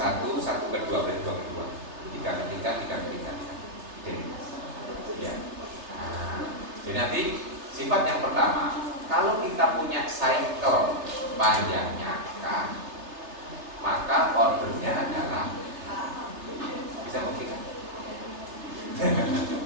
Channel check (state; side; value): late; left; 3.3 ms